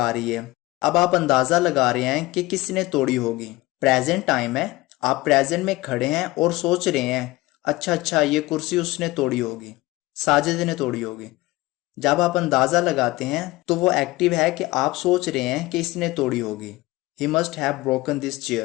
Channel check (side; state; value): right; quieter; 19.9 dB